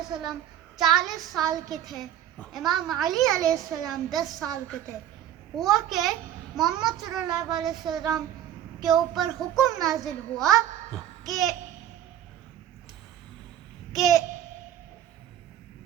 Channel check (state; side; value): quieter; left; 11.0 dB